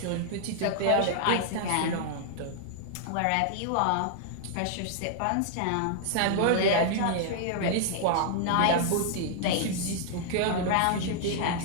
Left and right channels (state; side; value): different; both; correlation -0.01